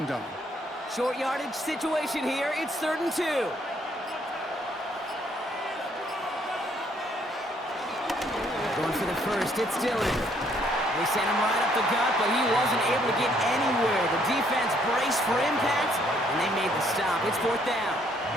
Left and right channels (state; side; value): normal; both; correlation 0.67